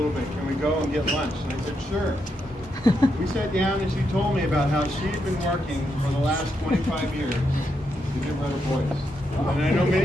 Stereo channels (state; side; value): normal; both; correlation 0.82